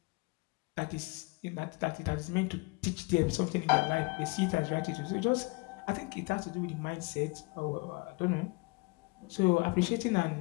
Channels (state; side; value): quieter; right; 27.2 dB